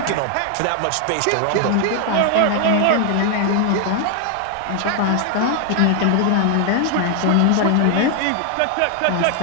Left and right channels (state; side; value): different; both; correlation 0.00